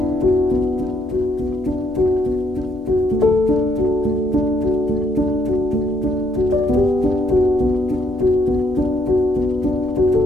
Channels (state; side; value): normal; both; correlation 0.71